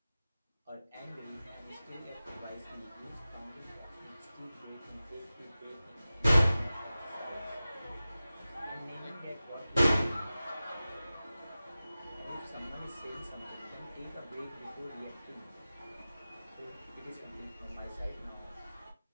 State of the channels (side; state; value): both; inverted; correlation -0.96